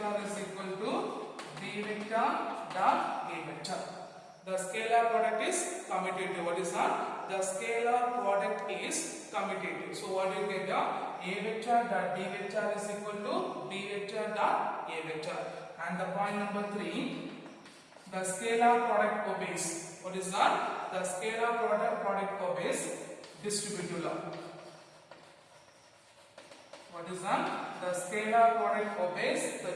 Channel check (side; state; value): both; identical; correlation 1.00